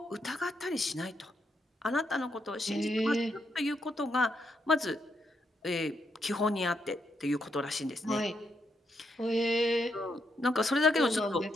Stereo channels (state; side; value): normal; both; correlation 0.79